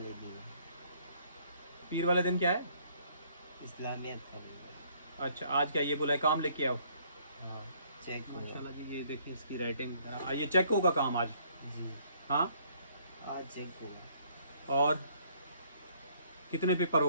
दिन, पीर वाले दिन क्या है? इस्लामियत का दिन। अच्छा, आज क्या ये बोला है काम लेके आओ? हाँ, चेक हुआ। माशाल्लाह जी, ये देखें इसकी राइटिंग। ये चेक होगा काम आज? जी, हाँ। आज चेक हुआ। और कितने पेपर हो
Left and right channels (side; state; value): both; inverted; correlation -0.63